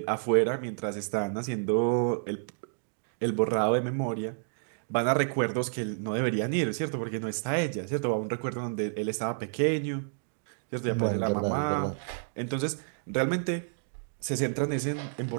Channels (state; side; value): silent; left; digital silence